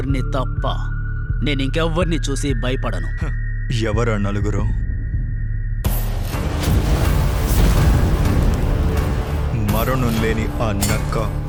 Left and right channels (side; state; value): both; identical; correlation 1.00